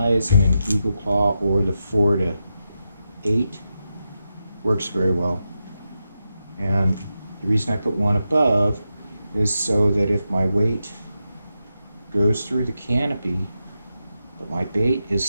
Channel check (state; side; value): inverted; both; correlation -0.88